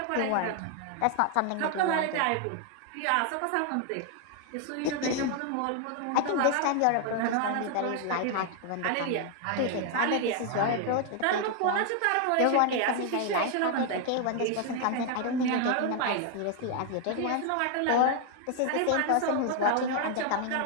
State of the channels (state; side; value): different; both; correlation 0.00